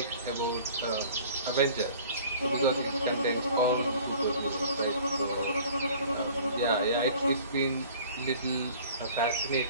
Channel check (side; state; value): both; inverted; correlation -0.48